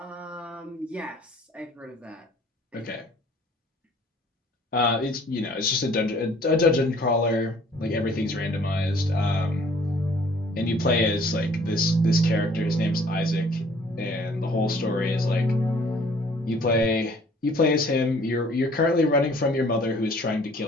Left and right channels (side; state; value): both; normal; correlation 0.56